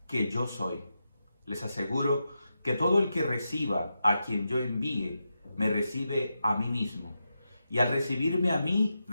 que yo soy. Les aseguro que todo el que reciba a quien yo envíe, me recibe a mí mismo. Y al recibirme a mí,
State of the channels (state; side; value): inverted; both; correlation -0.88